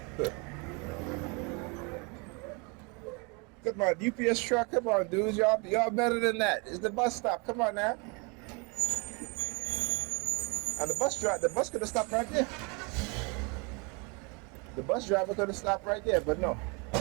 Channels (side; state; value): left; quieter; 31.2 dB